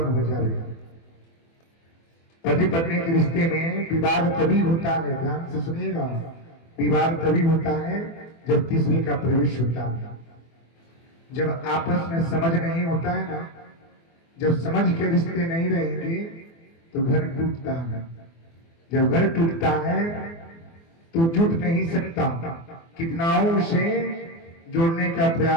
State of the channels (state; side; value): late; right; 24 ms